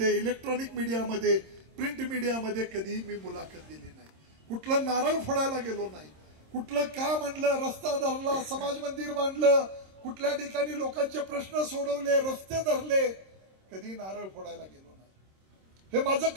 इलेक्ट्रॉनिक मीडियामध्ये, प्रिंट मीडियामध्ये कधीही मी मुलाखत दिली नाही. कुठलं नारळ फोडायला गेलो नाही. कुठलं काम आणलं, रस्ता धरला, समाज मंदिर बांधलं, कुठल्या ठिकाणी लोकांचे प्रश्न सोडवले, रस्ते धरले, कधी नारळ फोडायला गेलो नाही. हे माझं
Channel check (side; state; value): left; late; 26 ms